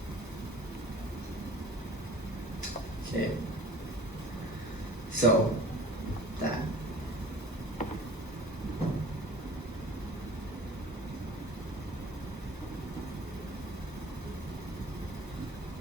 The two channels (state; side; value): normal; both; correlation 0.45